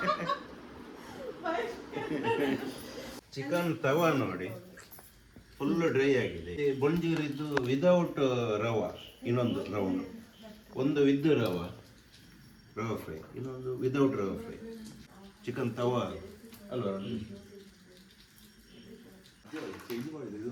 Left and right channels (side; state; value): both; identical; correlation 1.00